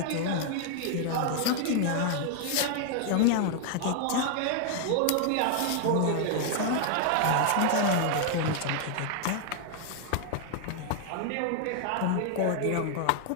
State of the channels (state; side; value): different; both; correlation 0.00